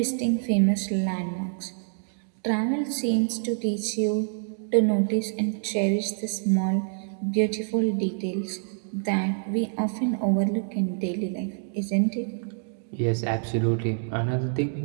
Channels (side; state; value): left; silent; digital silence